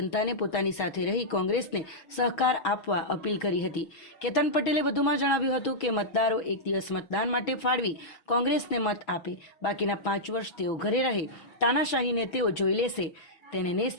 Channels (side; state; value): right; late; 6.2 ms